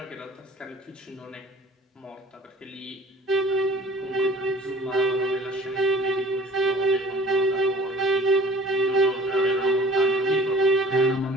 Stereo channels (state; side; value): normal; both; correlation 0.47